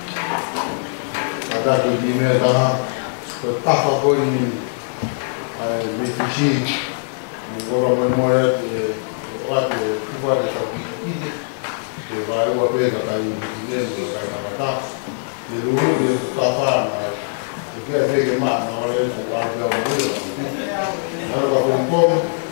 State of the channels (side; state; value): right; silent; digital silence